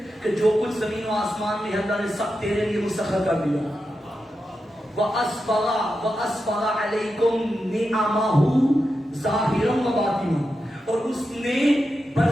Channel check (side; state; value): both; normal; correlation 0.89